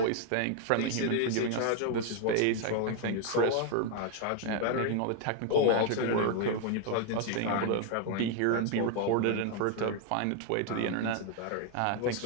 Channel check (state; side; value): different; both; correlation 0.01